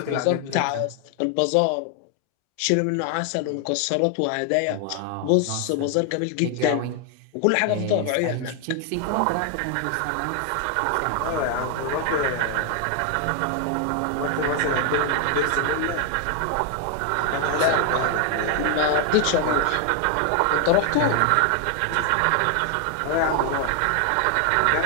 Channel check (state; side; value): different; both; correlation 0.01